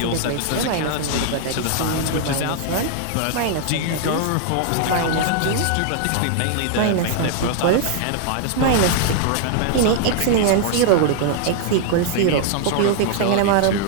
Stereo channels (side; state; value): both; different; correlation -0.01